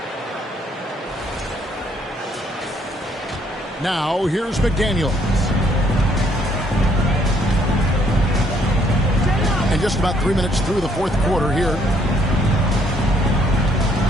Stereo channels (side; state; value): both; normal; correlation 0.67